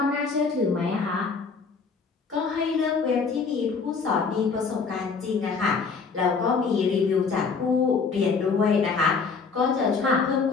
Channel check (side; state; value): right; quieter; 5.0 dB